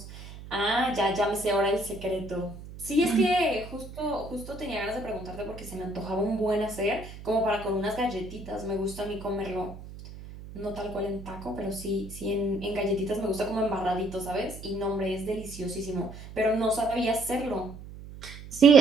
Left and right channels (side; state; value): right; noise; hum, 14 dB below the sound